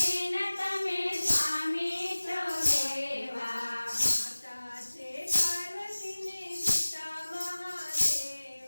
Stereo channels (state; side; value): inverted; both; correlation -1.00